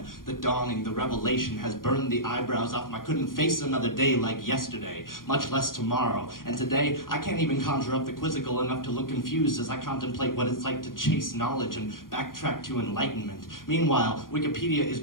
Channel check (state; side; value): late; right; 0.91 ms